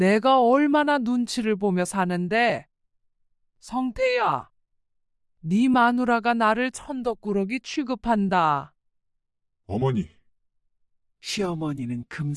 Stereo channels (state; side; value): identical; both; correlation 1.00